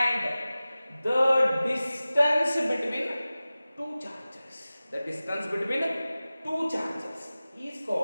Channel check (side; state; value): both; inverted; correlation -0.97